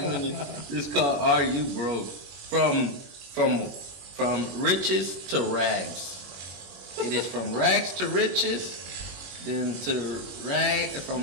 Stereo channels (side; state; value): left; late; 21 ms